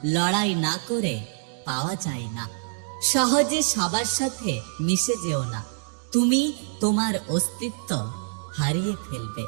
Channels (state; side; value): silent; left; digital silence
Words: লড়াই না করে পাওয়া যায় না। সহজে সবার সাথে মিশে যেও না, তুমি তোমার অস্তিত্ব হারিয়ে ফেলবে।